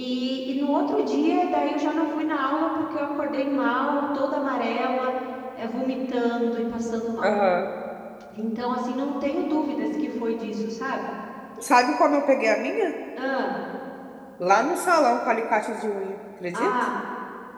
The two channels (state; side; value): identical; both; correlation 1.00